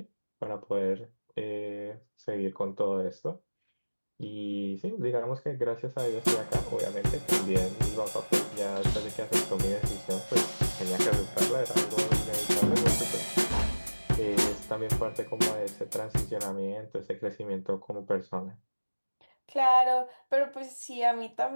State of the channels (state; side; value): inverted; both; correlation -1.00